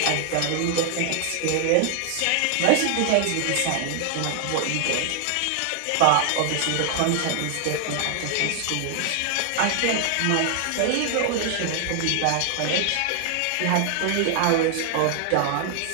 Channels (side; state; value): both; different; correlation 0.00